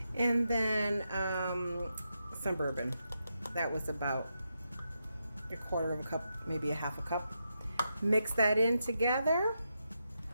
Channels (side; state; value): both; inverted; correlation -0.84